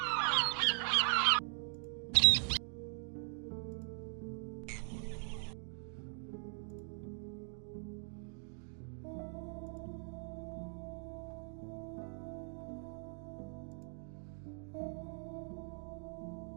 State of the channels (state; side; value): silent; left; 51 dB below the other